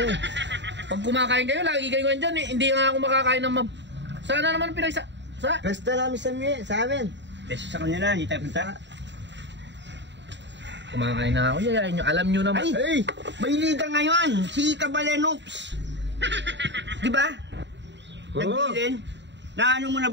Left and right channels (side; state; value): left; late; 0.52 ms